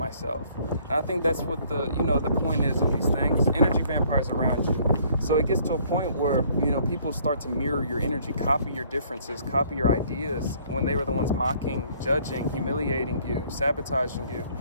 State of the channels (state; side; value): inverted; both; correlation -0.60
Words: And I think that's what the point is of these things. Energy vampires around you. So it gets to a point where, you know, people start to mirror your energy, copy your differences, copy your ideas when they were the ones mocking, judging, humiliating you, sabotaging you.